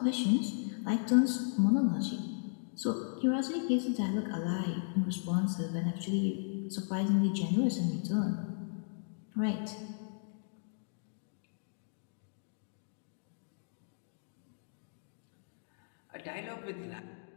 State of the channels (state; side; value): silent; right; digital silence